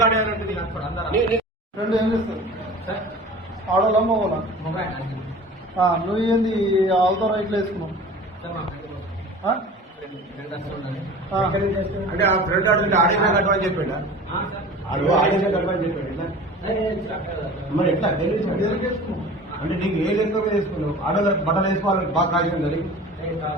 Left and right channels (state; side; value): normal; both; correlation 0.40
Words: ఫ్రెండ్ ఏం చేస్తారు? ఆడోళ్ళ మగోళ్ళ? నువ్వు ఏంది ఆల్తో రైట్లో వేసుకున్నావు? అంటే ఆ ఫ్రెండ్ ఆడుతుంటే ఆడేసా కట్టమని చెప్పాడు. ఆడేసా కట్టమని చెప్పాడు. మరి ఎట్లా వేసుకున్నావు అంటే నీకు ఏ లెక్క మీద వేసుకున్నావు? ఆడోళ్ళ బట్టలు వేసుకోవాలని బాగా కాల్చింది అంటే